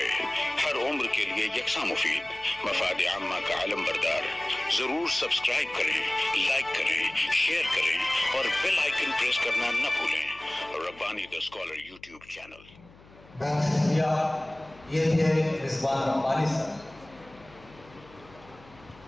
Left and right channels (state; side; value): noise; left; hum, 24 dB below the sound